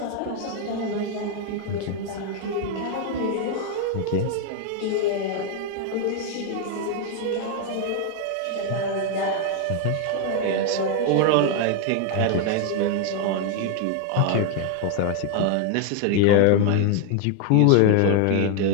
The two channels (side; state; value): both; different; correlation 0.00